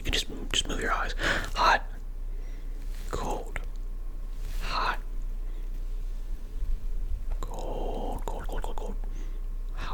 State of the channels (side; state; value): both; identical; correlation 1.00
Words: can just move your eyes. Hot, cold, hot, cold, cold, cold, cold, cold.